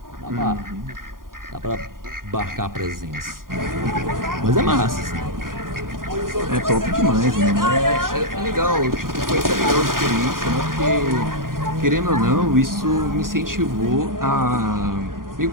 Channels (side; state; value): left; late; 0.91 ms